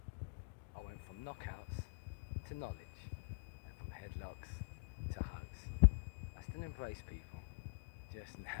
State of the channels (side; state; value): right; quieter; 34.3 dB